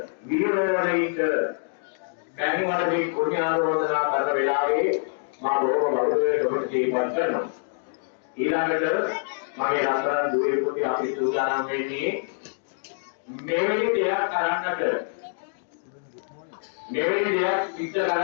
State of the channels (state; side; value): silent; right; digital silence